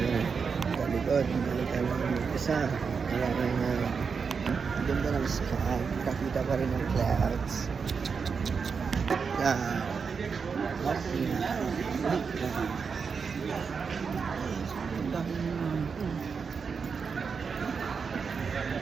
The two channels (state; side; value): quieter; left; 5.6 dB